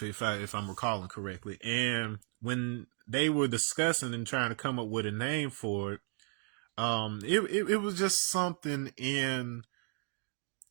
I'm recalling correctly. And when they were discussing and trying to come up with a name for it, it was just something in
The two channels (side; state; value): left; quieter; 38.0 dB